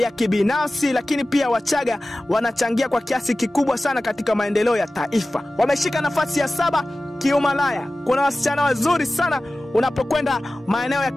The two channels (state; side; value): normal; both; correlation 0.96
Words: kibinafsi, lakini pia Wachaga wanachangia kwa kiasi kikubwa sana katika maendeleo ya taifa. Wameshika nafasi ya 7 kiumalaya. Kuna wasichana wazuri sana unapokwenda maeneo ya